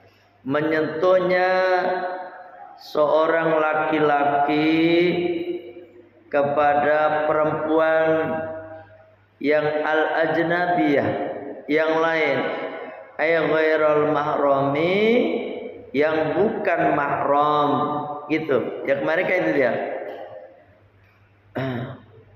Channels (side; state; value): both; identical; correlation 1.00